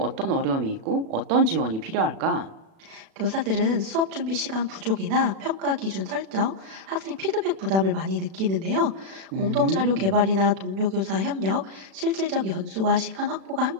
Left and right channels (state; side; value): late; left; 36 ms